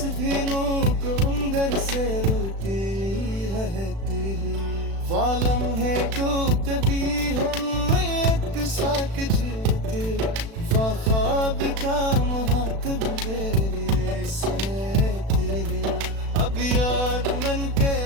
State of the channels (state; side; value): late; left; 36 ms